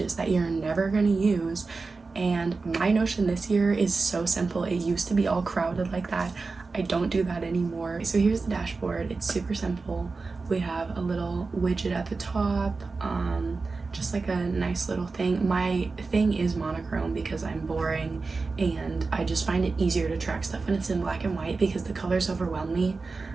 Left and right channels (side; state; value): left; quieter; 4.1 dB